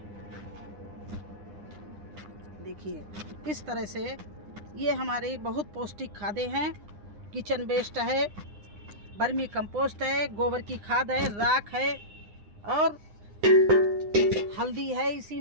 देखिए, इस तरह से ये हमारी बहुत पौष्टिक खादें हैं। किचन वेस्ट है, वर्मी कंपोस्ट है, गोबर की खाद है, राख है और हल्दी है, इसी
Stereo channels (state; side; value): late; left; 9.9 ms